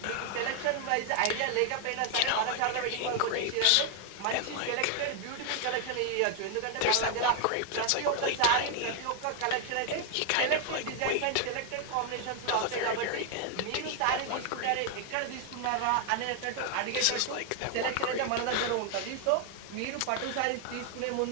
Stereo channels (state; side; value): different; both; correlation 0.00